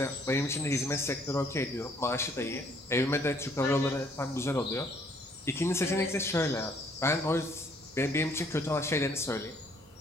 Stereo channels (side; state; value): both; normal; correlation 0.63